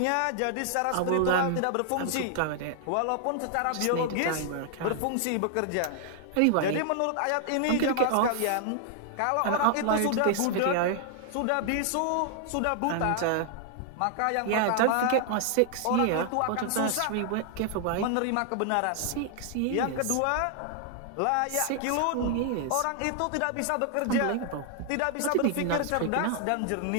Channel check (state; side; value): different; both; correlation 0.00